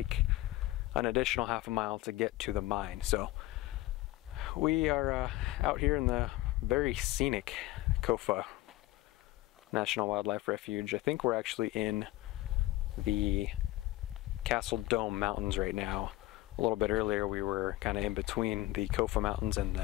an additional half a mile to get to the mine. So we are out here in the very scenic Kofa National Wildlife Refuge. I think we're actually in the Seldom Mountains right now. A little bit earlier we were kind of in between the Kofa Mountains and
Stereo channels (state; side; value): quieter; right; 17.5 dB